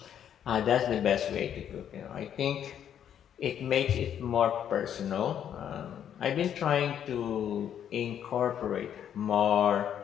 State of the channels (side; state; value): right; quieter; 9.4 dB